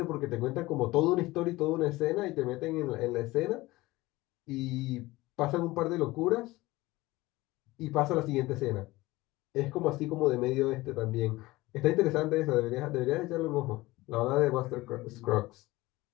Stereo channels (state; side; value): quieter; right; 19.7 dB